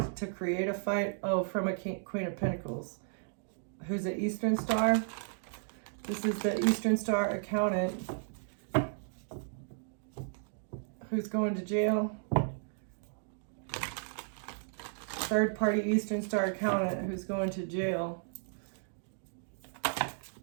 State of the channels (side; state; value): left; silent; digital silence